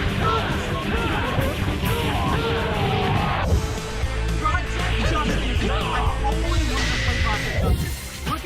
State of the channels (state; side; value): identical; both; correlation 1.00